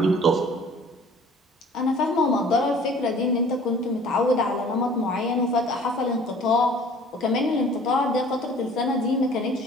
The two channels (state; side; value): normal; both; correlation 0.50